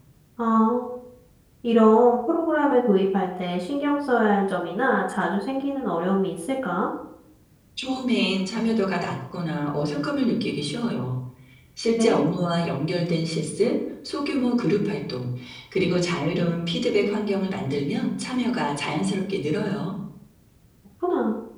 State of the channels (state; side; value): identical; both; correlation 1.00